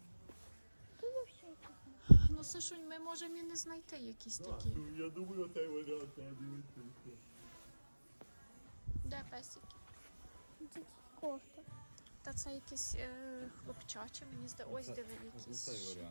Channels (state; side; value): inverted; both; correlation -1.00